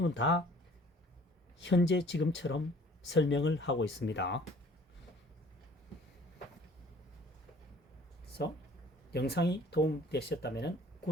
다 현재 지금처럼 설명을 하고 있습니다. 그래서 영상이 도움되셨다면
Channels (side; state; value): both; normal; correlation 0.53